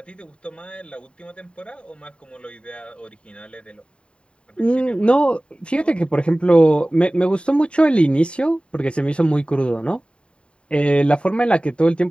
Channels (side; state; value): right; late; 0.055 ms